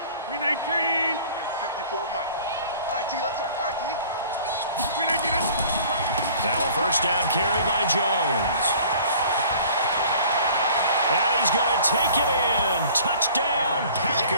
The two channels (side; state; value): both; inverted; correlation -0.49